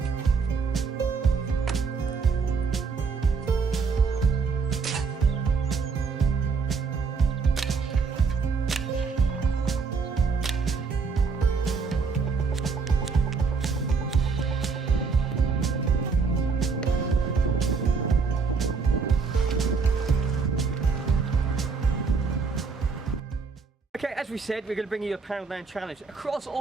Okay, as we said, we're going to bring you a Poundland Challenge across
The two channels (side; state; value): left; quieter; 5.1 dB